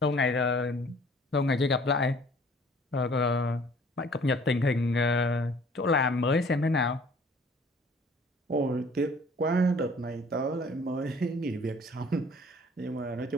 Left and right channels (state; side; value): normal; both; correlation 0.54